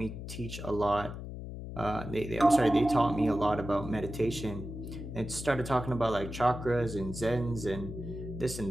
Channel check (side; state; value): left; noise; hum, 9 dB below the sound